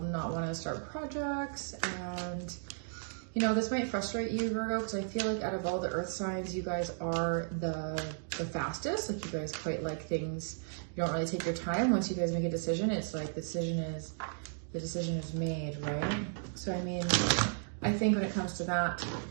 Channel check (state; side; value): silent; left; digital silence